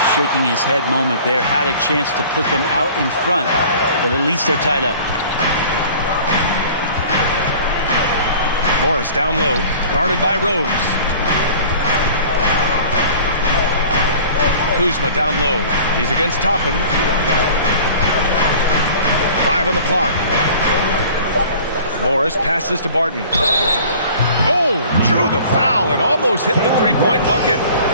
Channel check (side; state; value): both; inverted; correlation -0.46